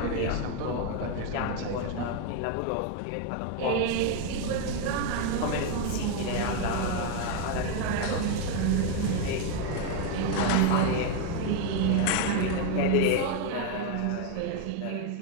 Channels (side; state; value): both; different; correlation 0.01